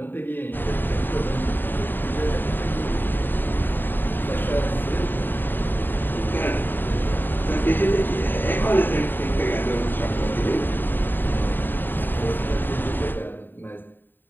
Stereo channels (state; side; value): late; right; 0.093 ms